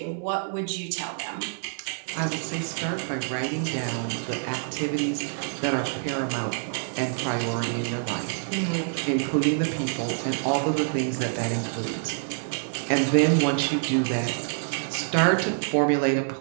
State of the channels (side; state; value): left; silent; digital silence